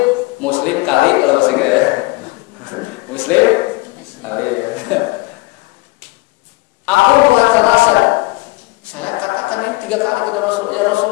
Muslim kali kalau bahasa Inggris ya. Muslim kali. Aku mengatakan saya katakan ini 3 kali kepada Rasulullah. Ya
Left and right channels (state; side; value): quieter; right; 22.7 dB